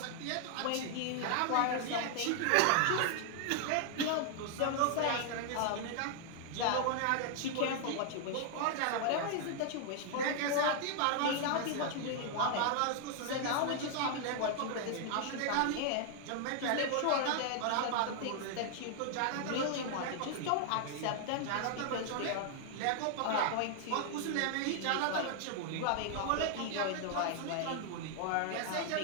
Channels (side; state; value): both; different; correlation 0.00